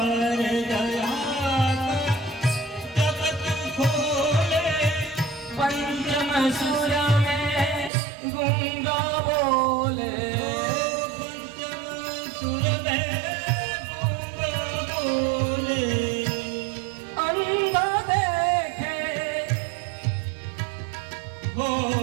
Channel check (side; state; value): left; drops out; at 7.9 s